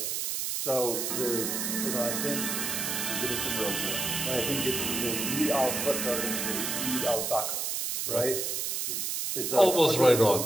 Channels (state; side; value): noise; right; hiss, 1 dB below the sound